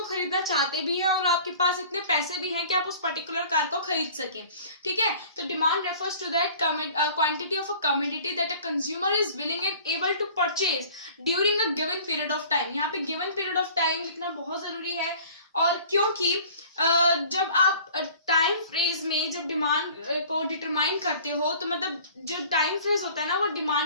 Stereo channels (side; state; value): both; inverted; correlation -0.47